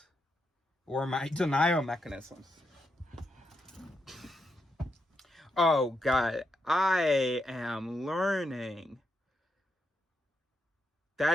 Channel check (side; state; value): both; normal; correlation 0.82